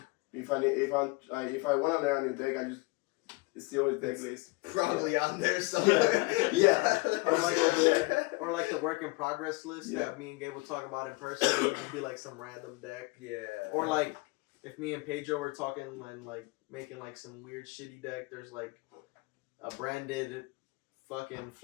if I want to learn a new deck, I just steal his deck list. Probably on there somewhere. Or like the work in progress list that me and Gabe will talk about in person. It would just be like some random deck. Or like if me and Pedro were talking and like making like some weird shitty deck, there's like a branded fucking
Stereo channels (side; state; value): right; quieter; 25.1 dB